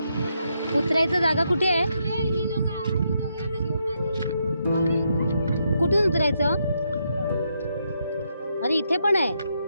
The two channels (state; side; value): inverted; both; correlation -0.79